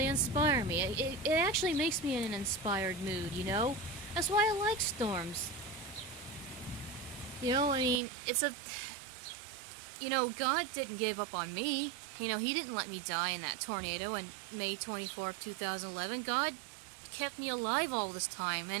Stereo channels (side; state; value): left; drops out; at 8.0 s